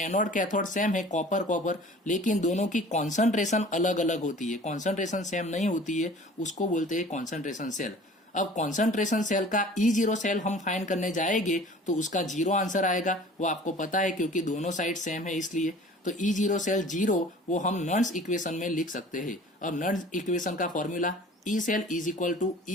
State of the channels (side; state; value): both; normal; correlation 0.46